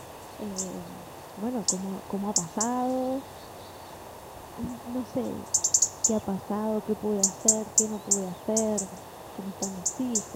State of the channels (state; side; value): identical; both; correlation 1.00